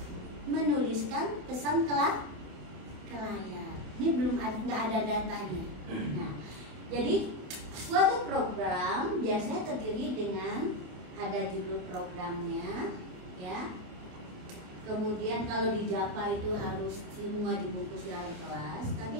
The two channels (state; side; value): late; left; 28 ms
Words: menuliskan pesan ke layar. Ini belum nggak ada datanya. Nah, jadi suatu program biasanya terdiri dengan ada judul programnya, ya. Kemudian kalau di Java itu harus semua dibungkus dalam kelas.